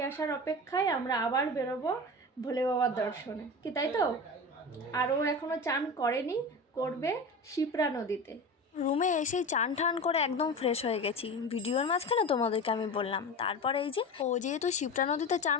আসার অপেক্ষায় আমরা আবার বেরোবো ভোলে বাবার দর্শনে, কি তাই তো? আরও এখনো চান করেনি, করবে শিপ্রা নদীতে। রুমে এসেই চান টান করে একদম ফ্রেশ হয়ে গেছি। ভিডিওর মাঝখানে তোমাদেরকে আমি বললাম। তারপরে এই যে ও যেহেতু শিপ্রা নদীতে চান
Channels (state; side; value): normal; both; correlation 0.28